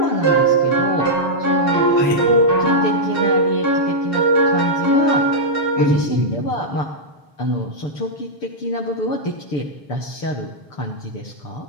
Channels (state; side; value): late; right; 6.8 ms